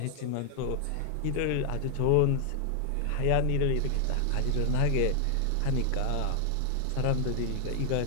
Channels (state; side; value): different; both; correlation 0.00